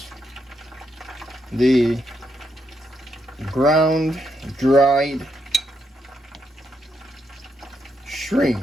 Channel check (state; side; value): normal; both; correlation 0.79